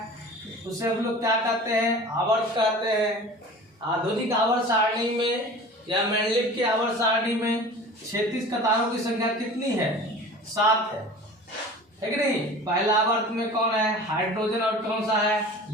उसे हम लोग क्या कहते हैं? आवर्त कहते हैं। आधुनिक आवर्त सारणी में या मेंडलीव की आवर्त सारणी में क्षैतिज कतारों की संख्या कितनी है? 7 है कि नहीं? पहला आवर्त में कौन है? हाइड्रोजन। और कौन सा है?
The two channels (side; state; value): both; normal; correlation 0.40